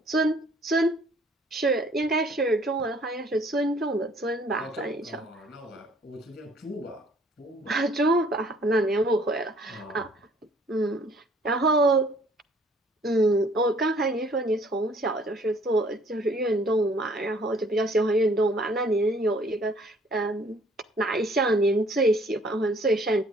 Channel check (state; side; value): normal; both; correlation 0.59